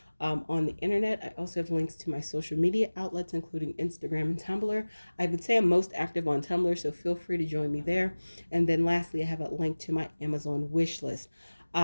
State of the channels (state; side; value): inverted; both; correlation -1.00